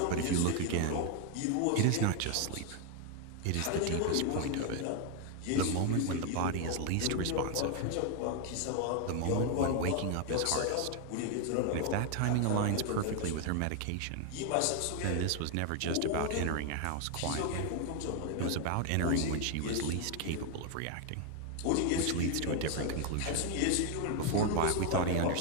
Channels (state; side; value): different; both; correlation 0.00